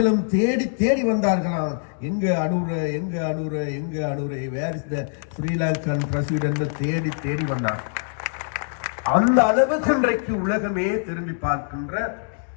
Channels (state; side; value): silent; right; digital silence